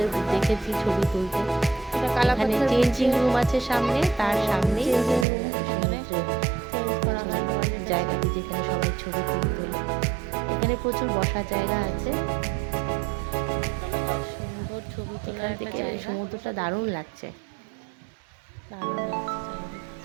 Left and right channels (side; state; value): left; drops out; at 5.2 s